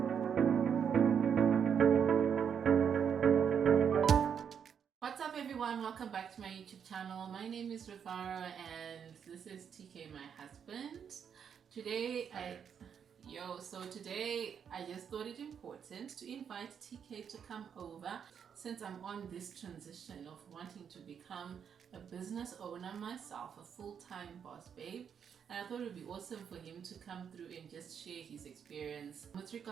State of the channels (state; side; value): quieter; left; 7.6 dB